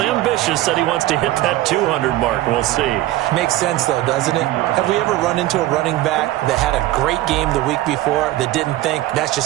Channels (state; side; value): quieter; left; 15.9 dB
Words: said he wants to hit that 200 mark. We'll see. Makes sense, though, doesn't it? Have we ever run into a running back that had a great game the week before that didn't think that's